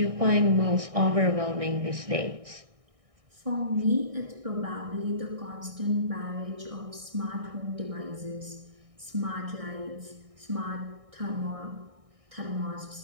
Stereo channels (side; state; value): left; late; 1.6 ms